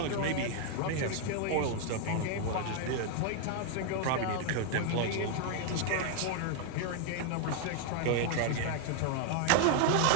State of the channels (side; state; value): both; different; correlation 0.00